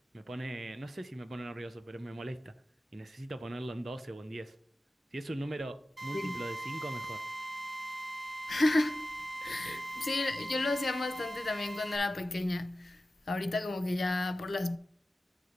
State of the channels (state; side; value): normal; both; correlation 0.94